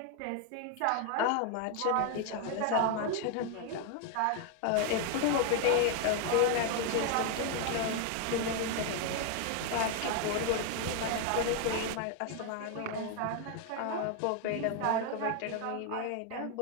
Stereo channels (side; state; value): both; different; correlation 0.01